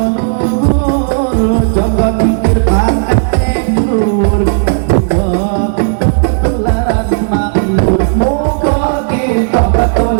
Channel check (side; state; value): left; silent; digital silence